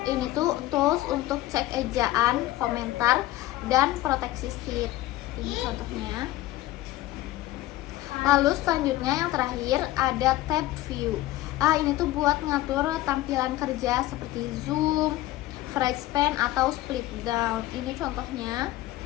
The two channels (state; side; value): quieter; right; 16.3 dB